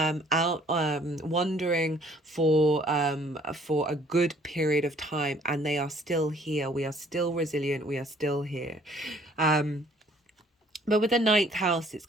wandering for a good period of time, and they are still here. We are still resilient. We are still here. But with the ninth house, it's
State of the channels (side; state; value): both; normal; correlation 0.59